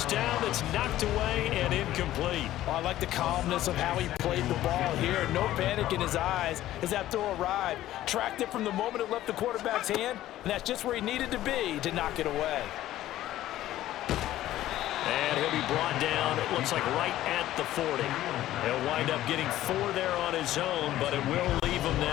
down that's knocked away and incomplete. Oh, I like the calmness of how he played the ball here. No panic in his eyes as that throw arrived. Tracked it from the moment it left the quarterback's hand, and that's just where he needed to be to knock it away. And he'll be brought down, it looks like right at the 40. He'll wind up getting 4 there on his own, but it will leave him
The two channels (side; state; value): right; quieter; 14.1 dB